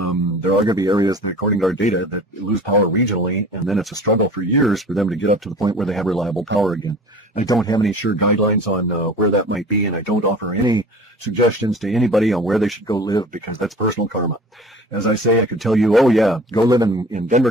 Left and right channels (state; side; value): normal; both; correlation 0.43